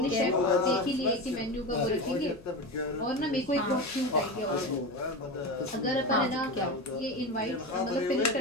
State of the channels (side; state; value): left; noise; hum, 23 dB below the sound